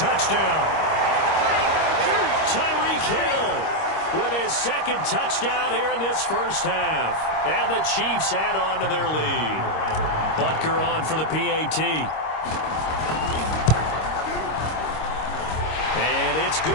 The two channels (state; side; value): late; right; 26 ms